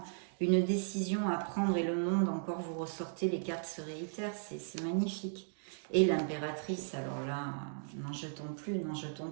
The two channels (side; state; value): left; silent; digital silence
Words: une décision à prendre et le monde, encore vous ressortez, les cartes se réitèrent, c'est magnifique. Et l'impératrice, alors là, n'en jetons plus,